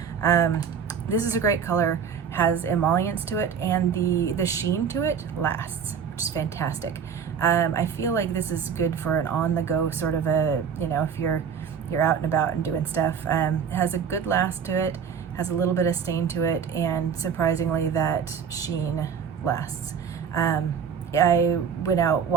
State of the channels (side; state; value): left; quieter; 7.1 dB